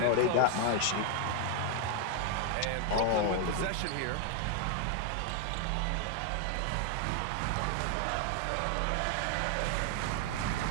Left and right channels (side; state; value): both; different; correlation 0.00